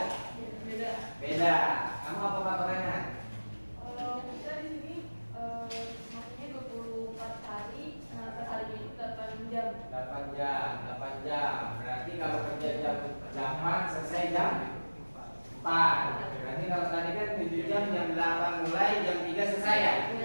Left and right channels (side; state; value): both; inverted; correlation -1.00